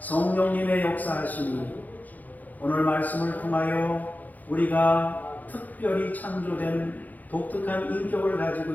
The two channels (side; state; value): right; late; 0.081 ms